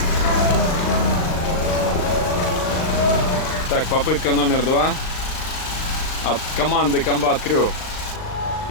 Так, попытка номер 2 от команды Combat Crew.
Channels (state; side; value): late; right; 39 ms